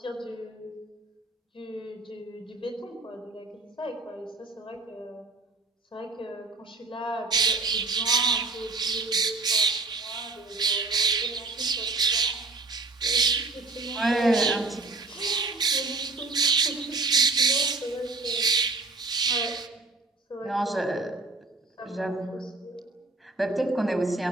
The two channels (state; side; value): quieter; left; 3.5 dB